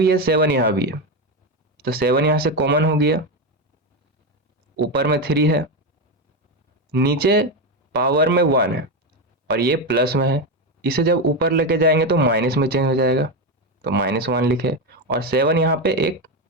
है, 7 यहाँ भी है, तो 7 यहाँ से कॉमन हो गया, ऊपर में 3 है, नीचे पावर में 1 है और ये प्लस में है, इसे जब ऊपर लेके जाएंगे तो माइनस में चेंज हो जाएगा, तो -1 लिखे और 7 यहाँ पे एक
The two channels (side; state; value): both; normal; correlation 0.12